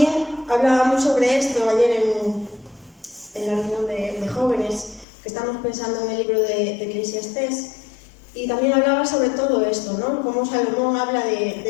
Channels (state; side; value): drops out; right; at 5.1 s